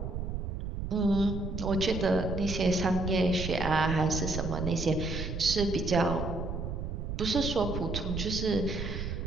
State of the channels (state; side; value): noise; right; rumble, 4 dB below the sound